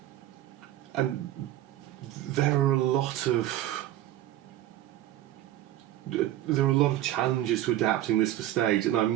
and there are a lot of challenges to adapting this for stage, and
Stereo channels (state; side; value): quieter; left; 13.5 dB